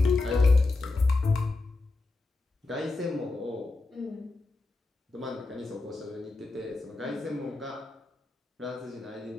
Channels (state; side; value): quieter; right; 3.3 dB